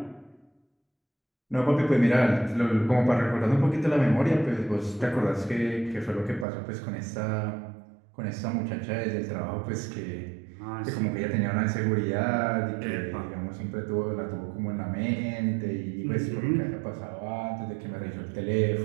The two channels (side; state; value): left; drops out; at 6.5 s